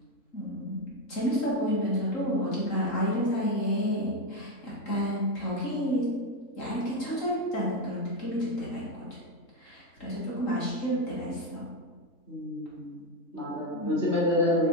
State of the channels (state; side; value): late; right; 3.8 ms